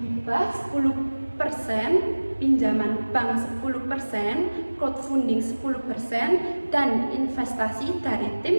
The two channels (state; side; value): inverted; both; correlation -1.00